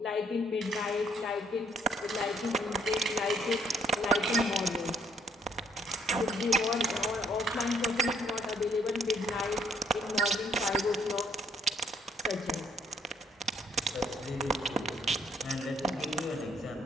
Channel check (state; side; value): normal; both; correlation 0.66